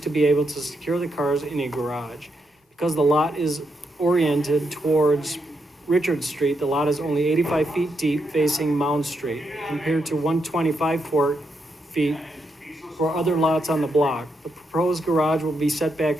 be able to secure the cars in a garage. Because the lot is oriented towards Richard Street, the lot is only 85 feet deep facing Mound Street, compared to 125 feet for other lots on the block. The proposed garage will be set back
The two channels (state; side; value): normal; both; correlation 0.81